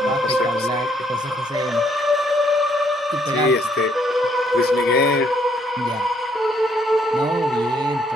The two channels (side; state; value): both; normal; correlation 0.69